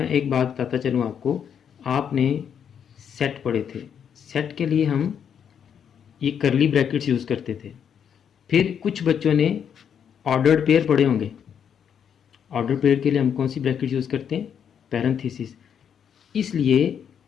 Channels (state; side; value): quieter; right; 8.1 dB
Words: एक बात बताता चलूँ आपको। आपने सेट पढ़े थे, सेट के लिए हम ये करली ब्रैकेट्स यूज़ करते थे। फिर कुछ बच्चों ने ऑर्डर्ड पेयर पढ़े होंगे। ऑर्डर पेयर के लिए हम कौन सी ब्रैकेट यूज़ करते हैं? पैरेंथेसिस। इसलिए